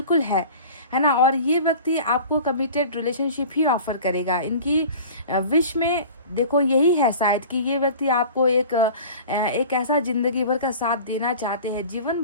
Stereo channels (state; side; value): inverted; both; correlation -0.40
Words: है ना। और ये व्यक्ति आपको कमिटेड रिलेशनशिप ही ऑफर करेगा। इनकी विश में देखो यही है शायद कि ये व्यक्ति आपको एक ऐसा जिंदगी भर का साथ देना चाहते हैं, जीवन